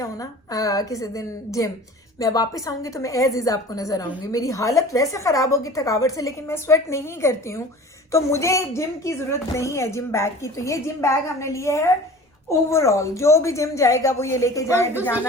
ना किसी दिन जिम, मैं वापस आऊंगी तो मैं एज इज आपको नजर आऊंगी। मेरी हालत वैसे खराब होगी थकावट से, लेकिन मैं स्वेट नहीं करती हूँ, तो मुझे जिम की जरूरत नहीं है जिम बैग की। तो ये जिम बैग हमने लिए है ओवरऑल, जो भी जिम जाएगा वो ये लेके जाए।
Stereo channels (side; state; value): both; normal; correlation 0.41